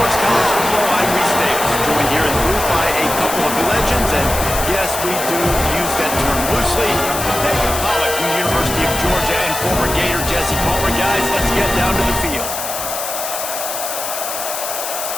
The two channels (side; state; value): left; noise; hiss, 5 dB below the sound